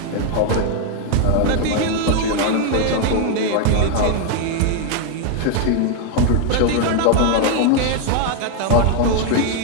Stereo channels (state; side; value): different; both; correlation 0.01